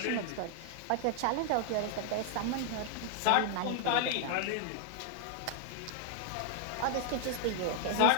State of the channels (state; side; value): different; both; correlation 0.00